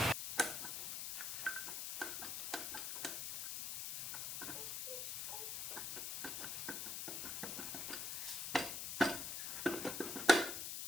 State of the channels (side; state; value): left; noise; hiss, 2 dB below the sound